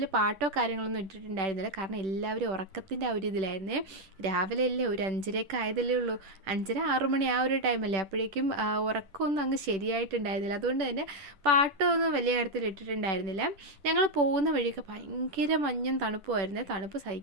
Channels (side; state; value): left; late; 10 ms